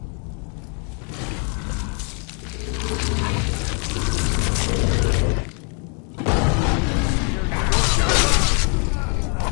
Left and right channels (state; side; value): quieter; right; 38.9 dB